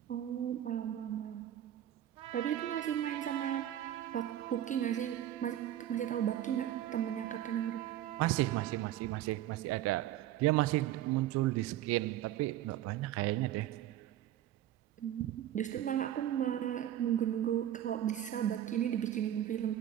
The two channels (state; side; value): quieter; left; 12.2 dB